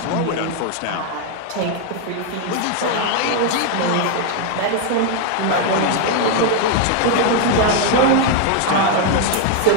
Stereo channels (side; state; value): both; different; correlation 0.00